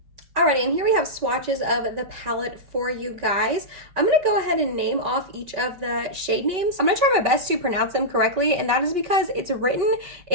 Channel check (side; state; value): left; late; 5.4 ms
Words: Alrighty, and here we have swatches of the palette for you guys. I'm going to go ahead and name off each of the shade names. I'm going to try my best to pronounce them correctly, and that is because it's written